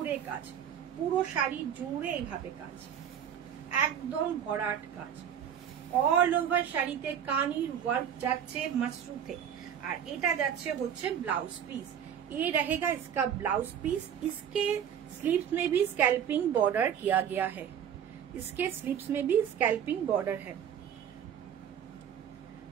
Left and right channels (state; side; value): quieter; left; 8.9 dB